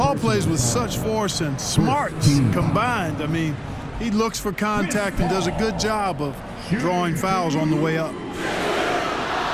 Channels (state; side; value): identical; both; correlation 1.00